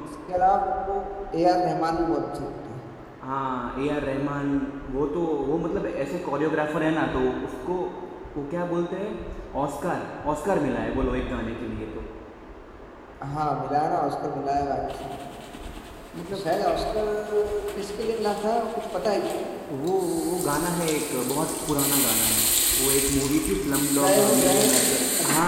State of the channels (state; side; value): identical; both; correlation 1.00